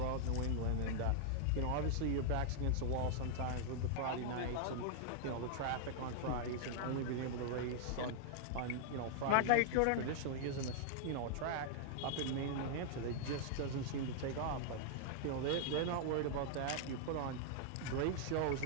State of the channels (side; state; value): both; different; correlation -0.01